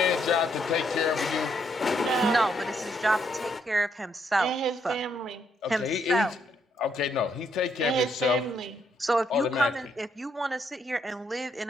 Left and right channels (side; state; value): both; normal; correlation 0.74